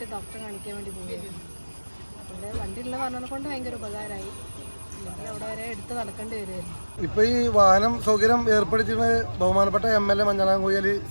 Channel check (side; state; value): both; inverted; correlation -1.00